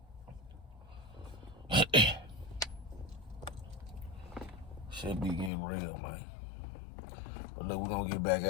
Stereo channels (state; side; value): drops out; right; at 5.5 s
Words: Shit be getting real, man. But look, we're gonna get back